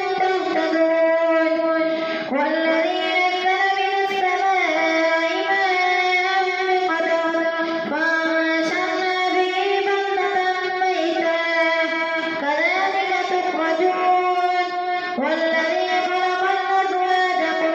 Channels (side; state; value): both; identical; correlation 1.00